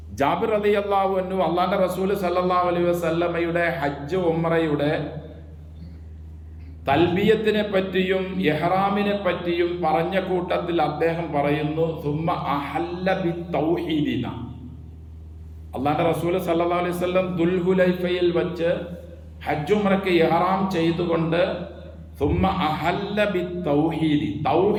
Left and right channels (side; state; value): both; identical; correlation 1.00